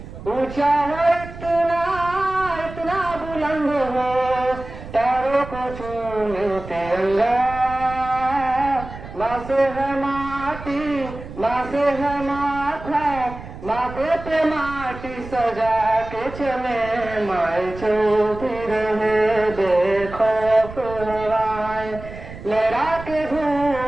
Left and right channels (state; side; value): noise; right; rumble, 13 dB below the sound